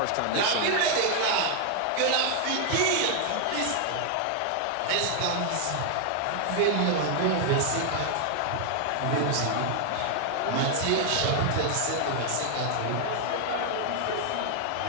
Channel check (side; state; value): both; different; correlation 0.00